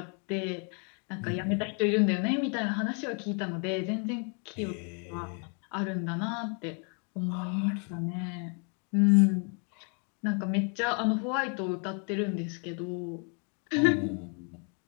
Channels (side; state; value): right; quieter; 38.8 dB